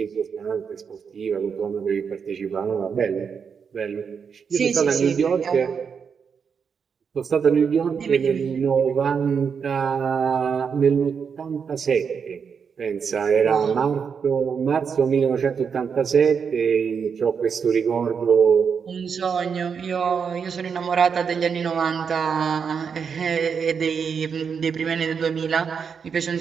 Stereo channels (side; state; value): left; quieter; 6.4 dB